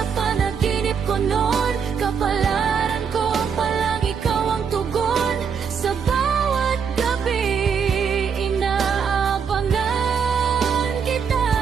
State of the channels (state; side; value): quieter; left; 6.6 dB